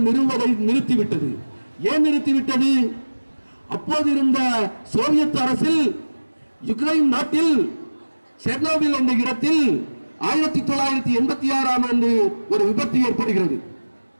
நிறுவுவதை நிறுத்திவிட்டது. ஏன் நிறுத்திவிட்டது? அப்போது இருந்த சோவியத் அரசில் யுக்ரைன் நாட்டில் செர்னோபில் என்ற இடத்தில் 1986ஆம் ஆண்டு ஒரு விபத்து ஏற்படுகிறது.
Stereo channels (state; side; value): inverted; both; correlation -1.00